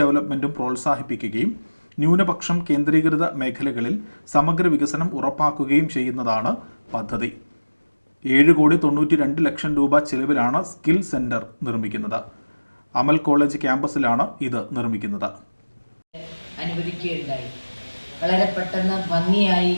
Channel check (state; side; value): inverted; both; correlation -1.00